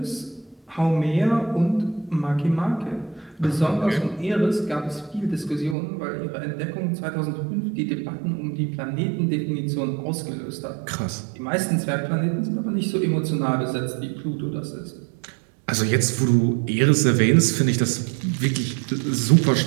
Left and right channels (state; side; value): drops out; left; at 5.8 s